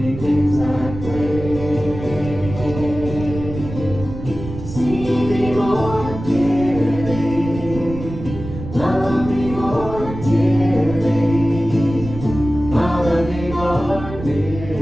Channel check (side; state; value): right; noise; rumble, 10 dB below the sound